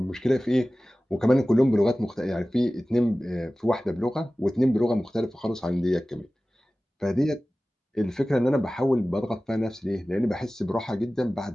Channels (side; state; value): both; normal; correlation 0.97